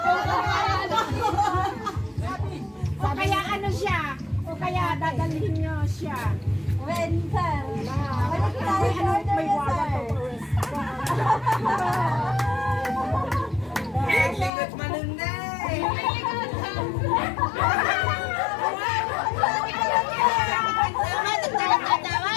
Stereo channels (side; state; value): right; drops out; at 14.5 s